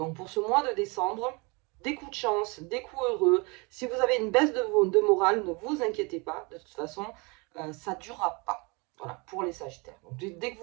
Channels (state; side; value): quieter; left; 28.9 dB